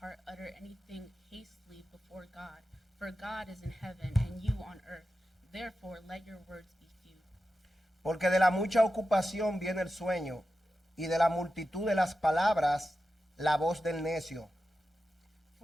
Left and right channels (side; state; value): both; normal; correlation 0.92